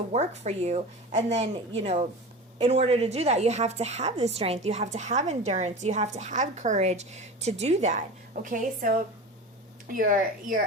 work for you. And then, in order to do that, you have to have the strength, you have to have endurance, you have to have courage to do that. Okay, so you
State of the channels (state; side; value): normal; both; correlation 0.32